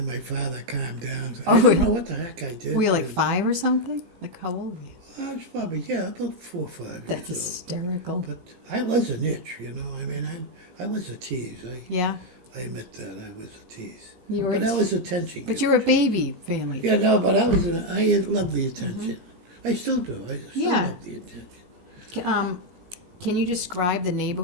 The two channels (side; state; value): left; late; 17 ms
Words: my father calmed down. I don't know what the heck I did. Were you like 5 or something? Like how old were you? I was probably, about 4 or 5 That's years hysterical. old. But I was an itch, you know. I mean, I was a tease. Yeah. I admit that I was a tease. You were But I was attention. But you're a baby family. Yeah, no, but I love the attention. I still do. I still Yeah. love the attention. Can you describe the